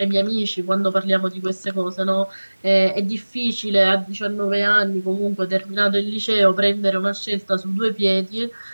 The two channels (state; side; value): inverted; both; correlation -1.00